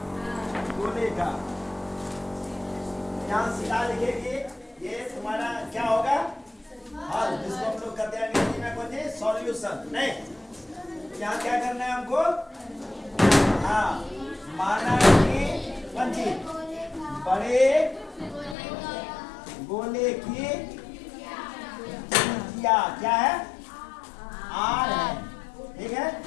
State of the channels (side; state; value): right; drops out; at 18.6 s